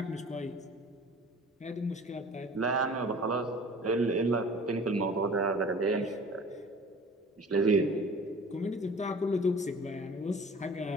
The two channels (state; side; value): normal; both; correlation 0.44